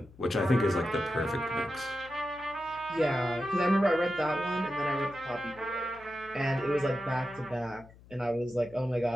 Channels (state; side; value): noise; left; hum, 23 dB below the sound